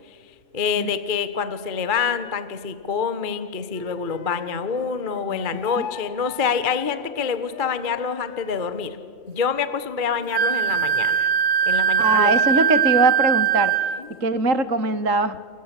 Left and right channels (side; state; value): left; late; 2.4 ms